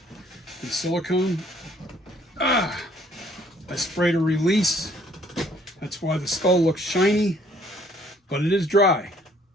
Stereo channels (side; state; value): both; normal; correlation 0.61